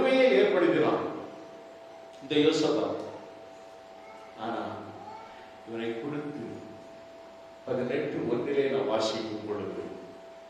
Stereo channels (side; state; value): both; identical; correlation 1.00